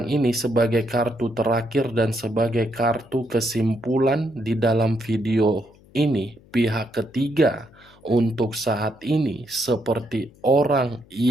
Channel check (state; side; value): noise; left; hum, 27 dB below the sound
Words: ini sebagai kartu terakhir dan sebagai kartu kesimpulan di dalam video ini. Pihak ketiga untuk saat ini seperti orang